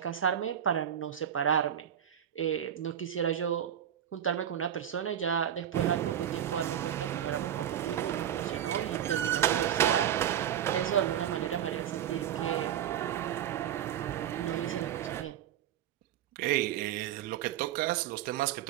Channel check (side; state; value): left; quieter; 10.2 dB